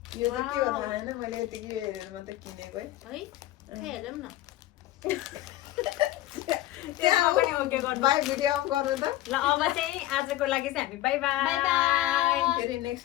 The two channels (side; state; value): right; quieter; 15.2 dB